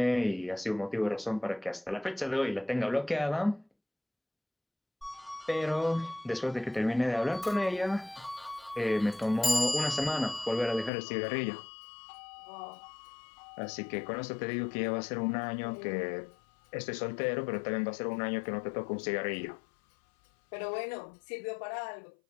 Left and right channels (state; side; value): drops out; right; at 10.9 s